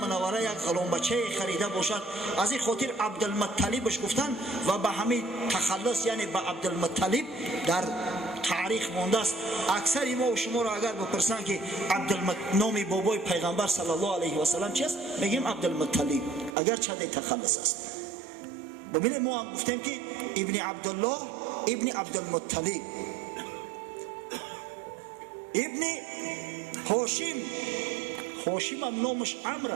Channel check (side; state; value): left; drops out; at 16.6 s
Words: یک غلام بچه خریده باشد. از این خاطر عبدالمطلبش گفتن و به همین تخلص یعنی به عبدالمطلب در تاریخ مانده است. اکثر ما و شما را اگر بپرسن که نام بابای پیغمبر صلی الله علیه و سلم چیست، میگیم عبدالمطلب، اگر چه تخلص است. ببینید ما هم گفتیم که ابن عبدالله ابن عبدالمطلب. ابن هاشم، هاشم هم نامش عمرو